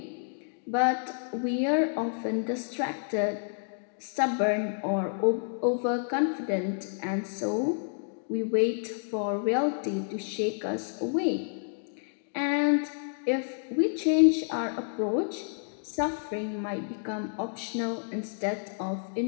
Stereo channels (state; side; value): silent; right; digital silence